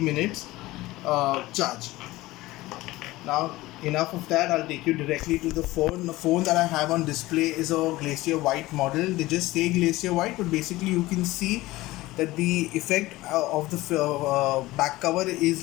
charge. Now enough of that, I'll take you directly to the phone. The phone that I have on display is a Glacier White model. They just say Glacier White, but basically you can see that the effect of the back cover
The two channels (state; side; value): quieter; right; 18.5 dB